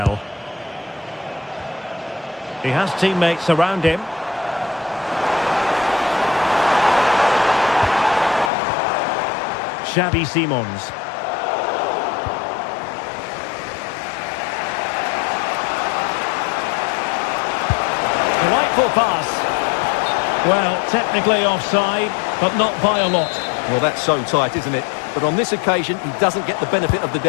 He has teammates around him. Xavi Simons. Delightful pass. Well, technically offside, but not by a lot. Well, that's so tight, isn't it? But on this occasion, he doesn't get the benefit of the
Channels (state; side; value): drops out; right; at 8.5 s